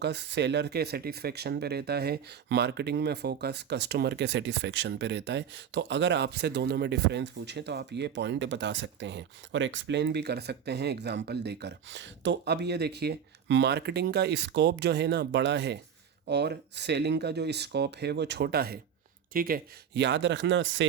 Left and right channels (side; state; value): left; quieter; 8.0 dB